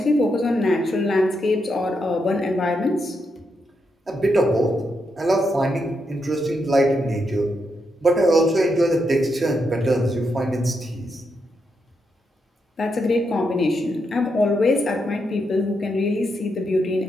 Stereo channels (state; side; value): normal; both; correlation 0.82